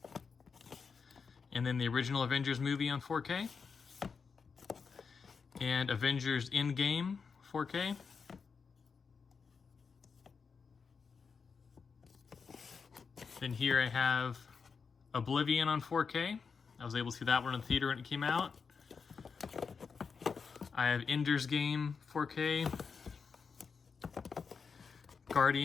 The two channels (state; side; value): quieter; right; 5.5 dB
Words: And then the original Avengers movie on 4K. And Avengers Endgame 4K. Then here I have Oblivion on 4K. I was able to see that one in the theater when it came out. I have Ender's Game 4K.